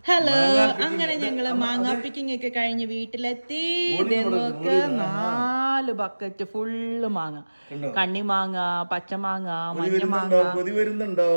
ഹലോ, അങ്ങനെ ഞങ്ങള് മാങ്ങ പിക്കിംഗ് ഒക്കെ കഴിഞ്ഞ് വീട്ടിലെത്തി. നോക്ക്, 4 ബക്കറ്റ് ഫുള്ള് മാങ്ങ. കണ്ണിമാങ്ങ, പച്ചമാങ്ങ, മഞ്ഞമാങ്ങ.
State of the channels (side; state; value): both; inverted; correlation -1.00